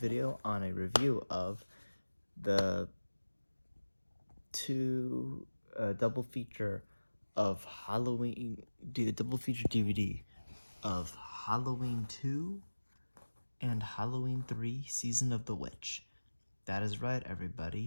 video on a review of the double feature of Halloween, do a double feature DVD of Halloween 2 and Halloween 3 Season of the Witch. That is right,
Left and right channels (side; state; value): both; inverted; correlation -1.00